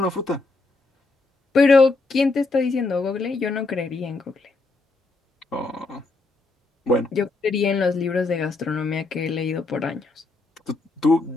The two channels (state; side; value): quieter; right; 3.5 dB